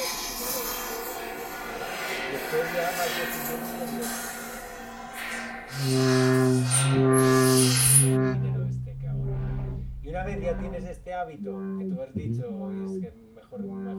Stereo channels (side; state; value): both; identical; correlation 1.00